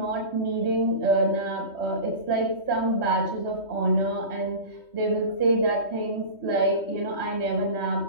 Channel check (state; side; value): late; right; 3.2 ms